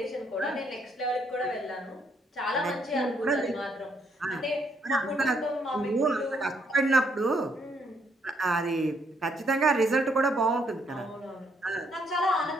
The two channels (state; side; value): normal; both; correlation 0.72